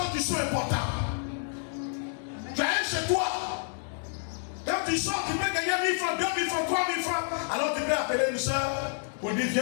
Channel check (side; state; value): right; silent; 58 dB below the other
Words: qui sont importantes. Tu as un chez toi. Quand tu sors, tu peux gagner 1000 francs, 2000 francs, 3000 francs. Alors tu peux appeler une soeur pour dire